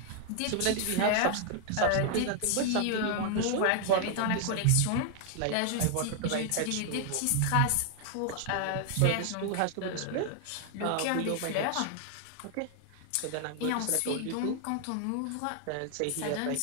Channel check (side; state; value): both; different; correlation 0.00